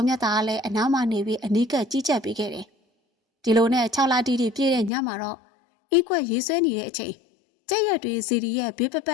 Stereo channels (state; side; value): drops out; right; at 4.9 s